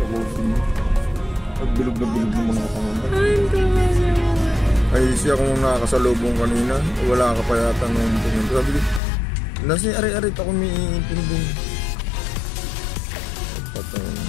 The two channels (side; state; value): right; drops out; at 9.0 s